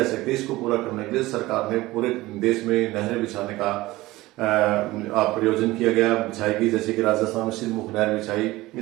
सकते। इसको पूरा करने के लिए सरकार ने पूरे देश में नहरें बिछाने का प्रयोजन किया गया, बिछाई गई, जैसे कि राजस्थान में सिरमुख नहर बिछाई।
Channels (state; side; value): quieter; left; 18.8 dB